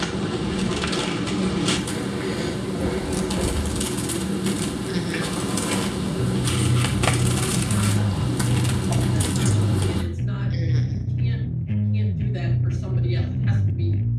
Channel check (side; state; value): both; identical; correlation 1.00